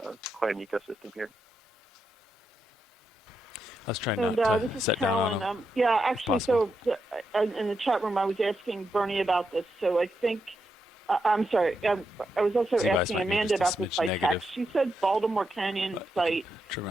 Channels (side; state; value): both; normal; correlation 0.84